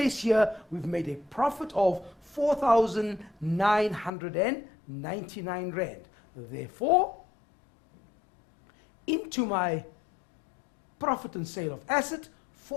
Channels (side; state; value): right; drops out; at 4.1 s